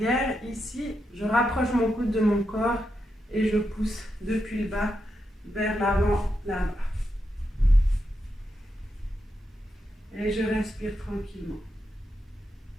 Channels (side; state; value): both; normal; correlation 0.85